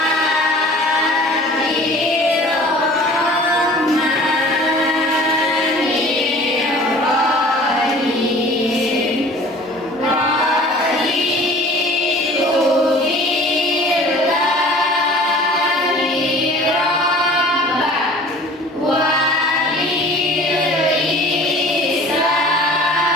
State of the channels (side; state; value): both; normal; correlation 0.46